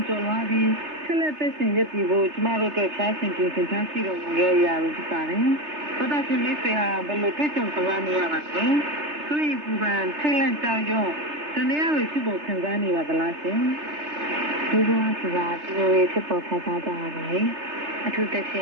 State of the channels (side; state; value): left; late; 3.3 ms